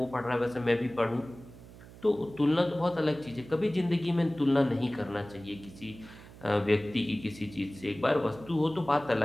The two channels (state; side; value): noise; right; hum, 19 dB below the sound